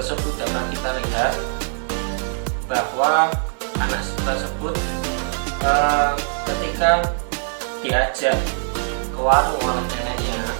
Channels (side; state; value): left; silent; 60 dB below the other